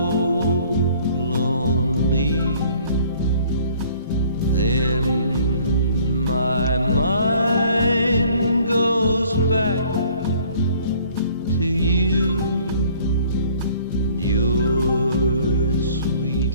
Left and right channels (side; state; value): both; inverted; correlation -0.56